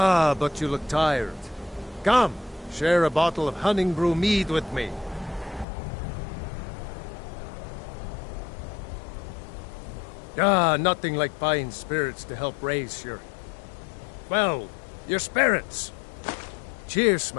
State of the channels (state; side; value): drops out; right; at 5.7 s